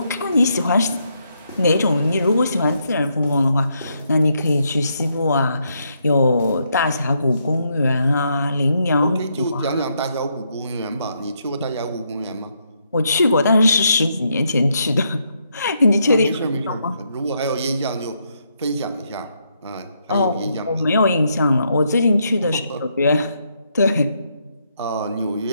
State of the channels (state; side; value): inverted; both; correlation -0.77